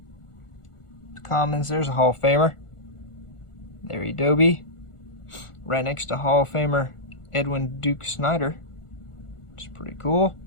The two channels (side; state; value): right; late; 1.4 ms